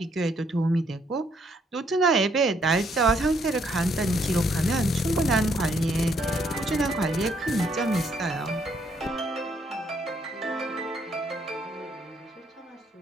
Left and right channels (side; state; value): both; normal; correlation 0.70